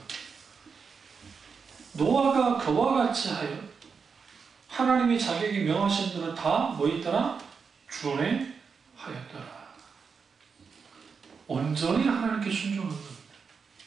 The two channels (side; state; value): left; quieter; 5.6 dB